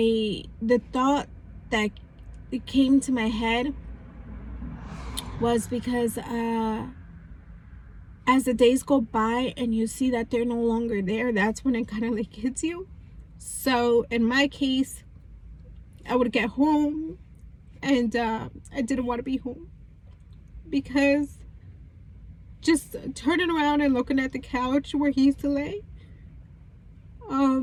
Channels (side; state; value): both; identical; correlation 1.00